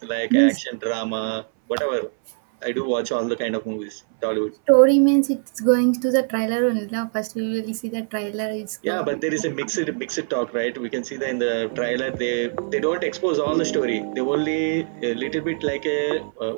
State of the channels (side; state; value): left; silent; 63 dB below the other